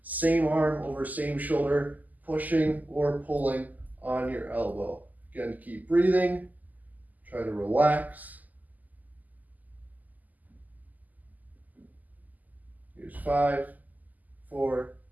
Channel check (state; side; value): late; left; 0.081 ms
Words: Same arm over same shoulder, pushing or pulling on your elbow. Again, keep breathing. Try to relax. Here's 5, 4,